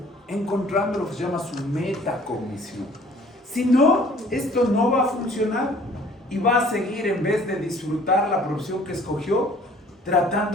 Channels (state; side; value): normal; both; correlation 0.54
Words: Encontrando lo que se llama su metacognición. Si no, esto no va a funcionar. Y va a seguir, en vez de disfrutar la profesión que escogió,